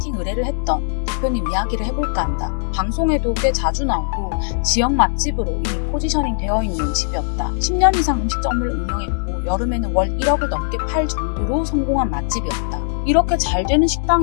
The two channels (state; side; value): silent; right; digital silence